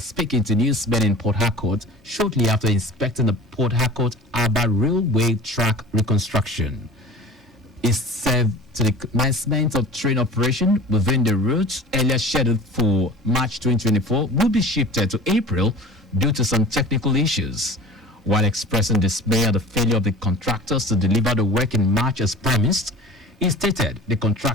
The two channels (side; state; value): both; normal; correlation 0.39